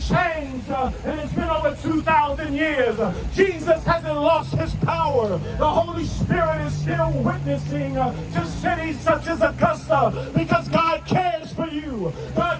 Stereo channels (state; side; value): identical; both; correlation 1.00